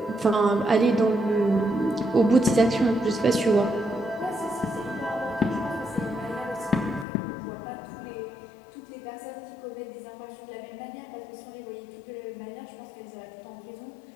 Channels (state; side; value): drops out; right; at 7.1 s